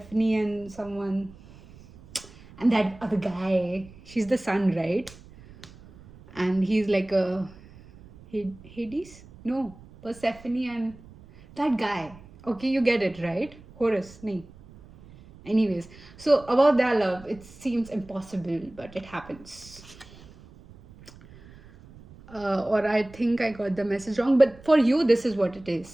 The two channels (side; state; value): right; noise; rumble, 21 dB below the sound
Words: and someone, and that other guy, she's the sun, right? And he's like a Hades? No, Persephone and that guy. Okay, you get it, right? Horus, nahi. Anyways, so about their love, it seems impossible, but it happens. Or I think I got the message wrong, but for you, this is what it